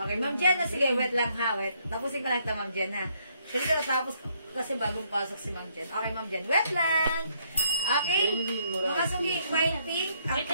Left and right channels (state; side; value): inverted; both; correlation -0.71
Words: Ma'am Jen, sige, wait lang ha, wait. Tapusin ko lang ito, Ma'am Jen, ha. Kasi ko natapos kasi bagong pasok si Ma'am Jen. Okay, Ma'am Jen, wait lang. Okay, mga sugi, mine pink, ang